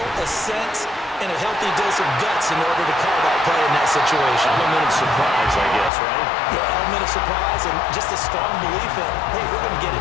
a sense, and a healthy dose of guts in order to call that play in that situation. Element of surprise, I guess, right? Yeah, element of surprise and just a strong belief in, hey, we're going to get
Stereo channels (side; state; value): right; drops out; at 5.9 s